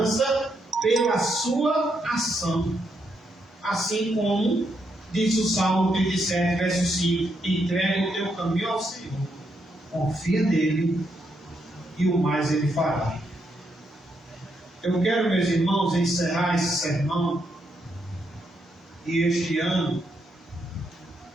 pela sua ação. Assim como diz o Salmo 37, verso 5: entrega o teu caminho ao Senhor, confia nele e o mais ele fará. Eu quero, meus irmãos, encerrar esse sermão e este ano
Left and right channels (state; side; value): normal; both; correlation 0.79